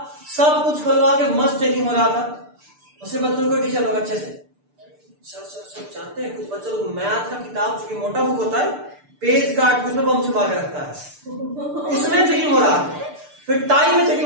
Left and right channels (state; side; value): late; left; 6.8 ms